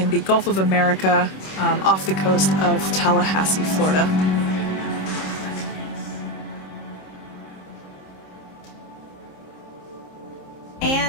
the Gulf of America, off the coast of Tallahassee, Florida.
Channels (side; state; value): right; late; 26 ms